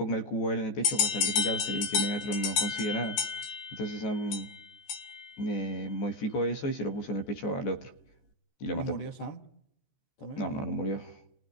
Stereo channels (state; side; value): late; right; 14 ms